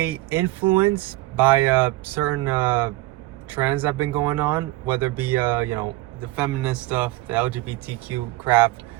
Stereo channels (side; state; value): left; quieter; 18.9 dB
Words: influenced by certain trends that have been going on, whether it be, the feminist stuff, the LGBTQ crap,